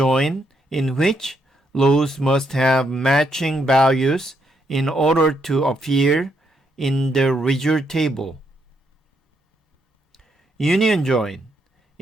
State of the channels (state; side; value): normal; both; correlation 0.77